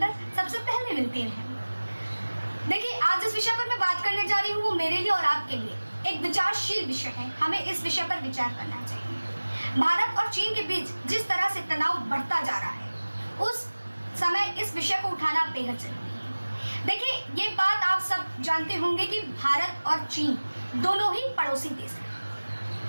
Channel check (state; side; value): inverted; both; correlation -1.00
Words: सबसे पहले मिलती रहें। देखिए, आज जिस विषय पर मैं बात करने जा रही हूँ वो मेरे लिए और आपके लिए एक विचारशील विषय है। हमें इस विषय पर विचार करना चाहिए। भारत और चीन के बीच जिस तरह से तनाव बढ़ता जा रहा है, उस समय इस विषय को उठाना बेहद जरूरी है। देखिए, ये बात आप सब जानते होंगे कि भारत और चीन दोनों ही पड़ोसी देश